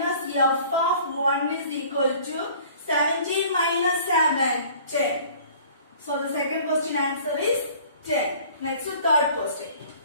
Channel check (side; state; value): both; inverted; correlation -0.49